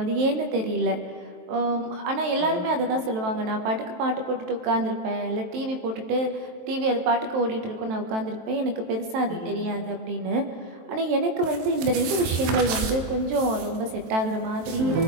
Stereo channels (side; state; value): left; late; 23 ms